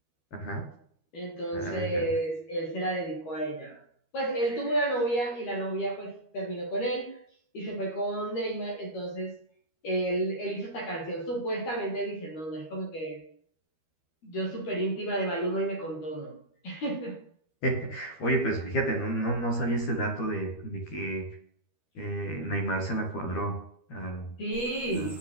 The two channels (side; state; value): right; late; 13 ms